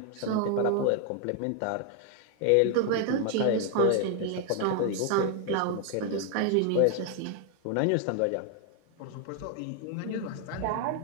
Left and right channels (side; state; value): both; different; correlation 0.00